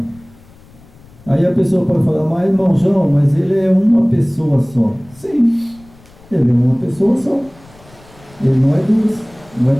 Aí a pessoa pode falar, mas irmão João, mas ele é uma pessoa só. Sim, ele é uma pessoa só. Ele não é duas, não é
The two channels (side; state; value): left; noise; rumble, 25 dB below the sound